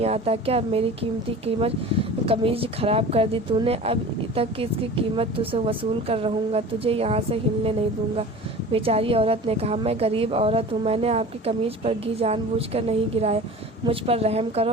آتا کیا میری قیمتی قمیض خراب کر دی تو نے؟ اب تک اس کی قیمت تجھ سے وصول کر رہوں گا، تجھے یہاں سے ہلنے نہیں دوں گا۔ بیچاری عورت نے کہا، میں غریب عورت ہوں، میں نے آپ کی قمیض پر گھی جان بوجھ کر نہیں گرایا، مجھ پر رحم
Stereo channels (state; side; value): normal; both; correlation 0.38